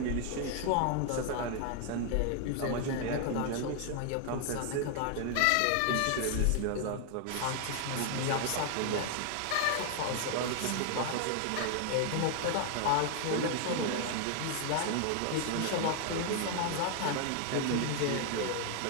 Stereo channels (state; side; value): different; both; correlation 0.00